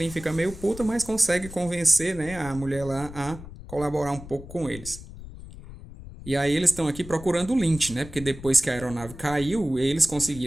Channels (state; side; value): noise; left; rumble, 14 dB below the sound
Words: fica meio puta, mas consegue convencer, né, a mulher lá a colaborar um pouco com eles. E aí eles estão aqui procurando o Lynch, né? Porque depois que a aeronave caiu, eles